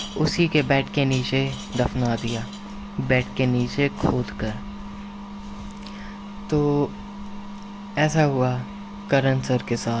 उसी के बेड के नीचे दफना दिया, बेड के नीचे खोद कर। तो ऐसा हुआ करण सर के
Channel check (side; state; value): both; identical; correlation 1.00